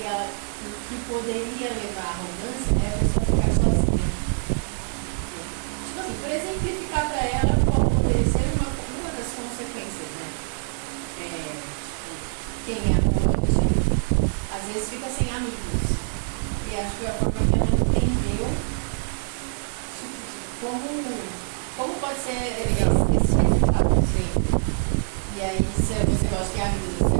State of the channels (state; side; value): silent; left; 62 dB below the other